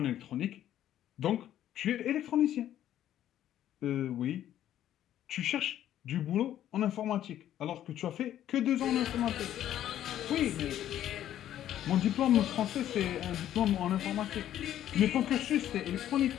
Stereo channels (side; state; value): right; quieter; 11.7 dB